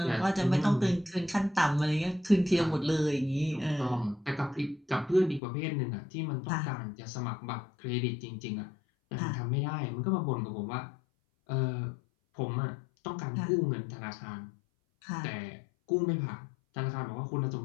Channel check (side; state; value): right; drops out; at 5.4 s